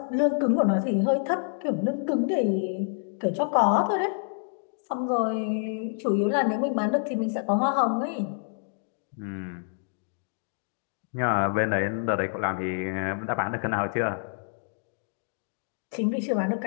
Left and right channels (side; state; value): right; silent; digital silence